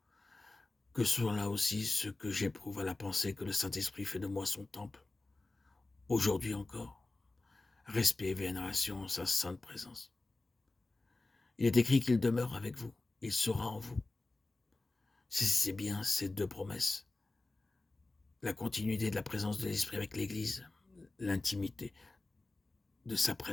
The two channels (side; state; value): right; quieter; 3.1 dB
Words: Que soit là aussi ce que j'éprouve à la pensée que le Saint-Esprit fait de moi son temple. Aujourd'hui encore, respect et vénération en sa sainte présence. Il est écrit qu'il demeure avec vous, il sera en vous. C'est bien ces deux promesses. La continuité de la présence de l'Esprit avec l'Église, l'intimité de sa